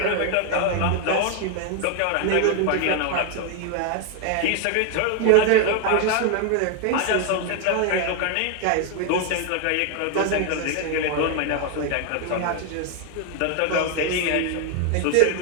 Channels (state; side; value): different; both; correlation 0.01